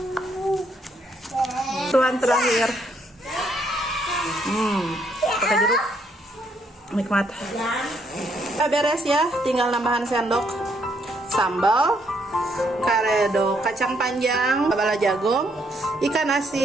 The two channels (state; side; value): normal; both; correlation 0.72